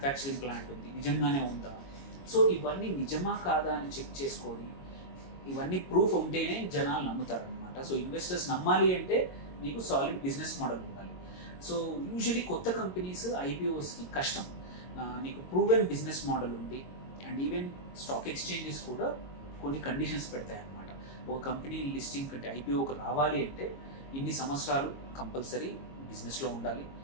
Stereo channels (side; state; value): right; late; 22 ms